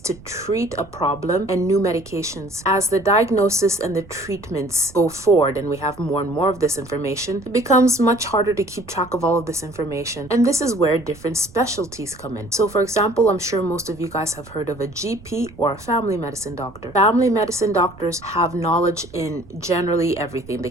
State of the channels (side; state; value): right; noise; rumble, 21 dB below the sound